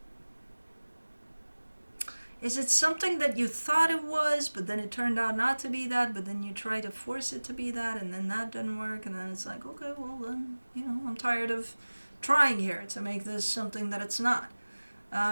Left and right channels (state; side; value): inverted; both; correlation -1.00